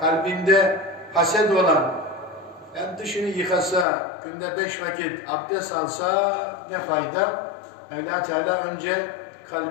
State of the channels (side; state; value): right; drops out; at 3.9 s